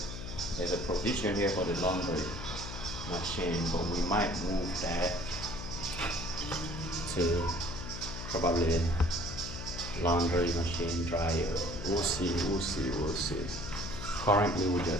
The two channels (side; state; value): left; noise; hum, 9 dB below the sound